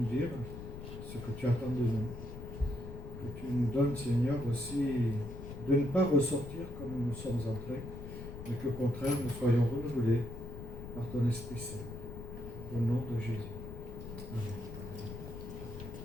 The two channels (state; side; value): noise; left; rumble, 10 dB below the sound